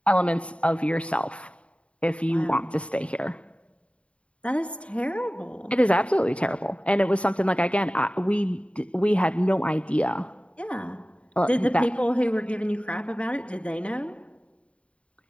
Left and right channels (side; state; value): right; late; 0.061 ms